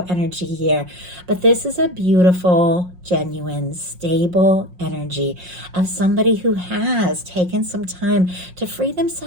energy here. But this is a beautiful, genuine, stable energy of somebody who has taken some time to free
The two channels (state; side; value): late; left; 5.6 ms